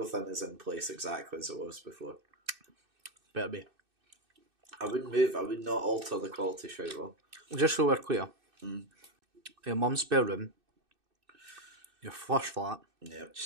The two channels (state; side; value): late; left; 2.6 ms